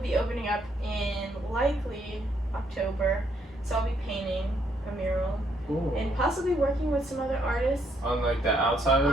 opening up in likely October. So I'll be painting a mural Ooh. and possibly working with some other artists On like the outside of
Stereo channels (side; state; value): both; normal; correlation 0.72